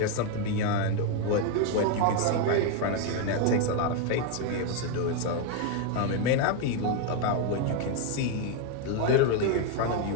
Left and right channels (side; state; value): both; different; correlation 0.01